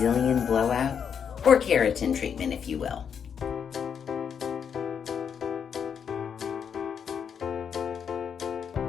blowout or keratin treatment, if you will.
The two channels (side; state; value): right; quieter; 7.4 dB